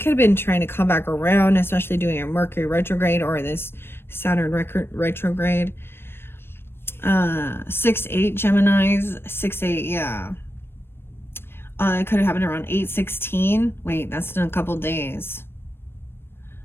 have been trying to come back around, especially doing a Mercury retrograde or this Saturn retrograde. 6-8 Geminis, 6-8, yeah. It could have happened around 8:16. Wait, that's in a couple days.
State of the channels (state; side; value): late; right; 0.11 ms